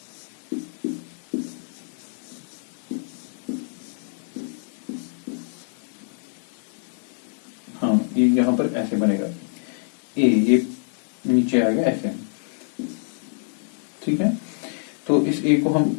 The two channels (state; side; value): silent; right; digital silence